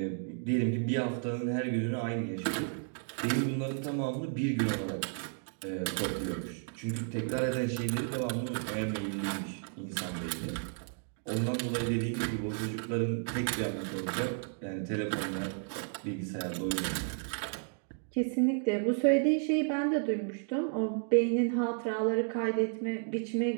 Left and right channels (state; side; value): silent; left; 56 dB below the other